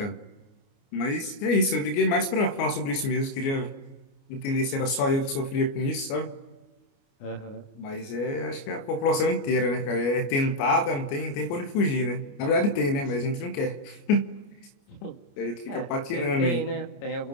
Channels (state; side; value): late; right; 29 ms